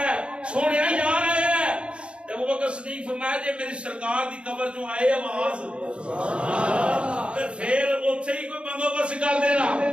سونے یار آیا جب وہ بکر صدیق فرمایا جی میری سرکار دی قبر جو آئے آواز پھر اتھے ہی کوئی بندوبست کر دینا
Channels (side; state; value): left; late; 0.058 ms